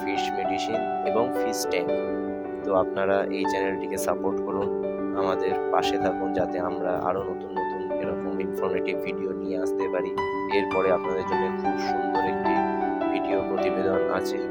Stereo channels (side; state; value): both; identical; correlation 1.00